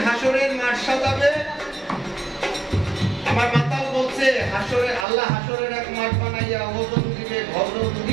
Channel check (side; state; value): left; drops out; at 5.1 s